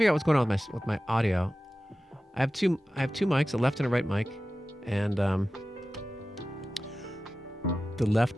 out what's going on with my audio. I have two mics, a left and a right mic, and the left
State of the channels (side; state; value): both; normal; correlation 0.95